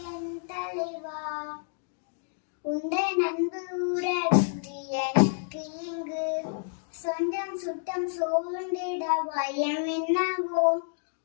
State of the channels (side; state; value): right; silent; digital silence